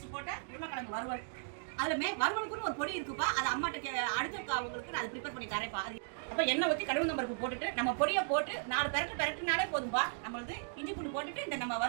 போட்ட உருளைக்கிழங்கு வறுவல். அதுல வறுவலுக்குன்னு ஒரு பொடி இருக்குப்பா. அது அம்மாட்ட அடுத்த அவங்களுக்கு நான் ப்ரிப்பேர் பண்ணி தரேன்ப்பா. அப்ப எண்ணெய் ஊத்தி கடுகு பருப்பு போட்டுட்டு நம்ம பொடியை போட்டு 4 பெரட்டுனாலே போதும்பா. நம்மளுது இஞ்சி பூண்டு போட்டுட்டு இந்த நம்ம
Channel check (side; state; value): left; silent; digital silence